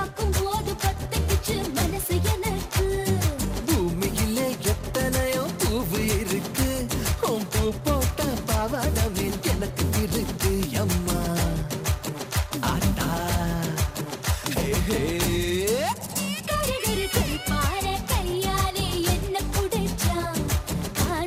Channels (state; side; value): identical; both; correlation 1.00